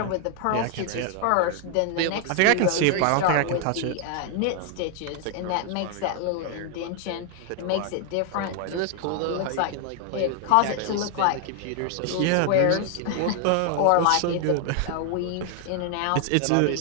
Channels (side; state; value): both; different; correlation 0.00